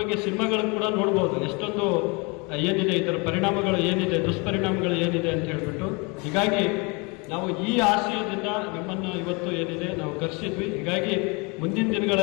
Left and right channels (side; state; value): right; quieter; 29.4 dB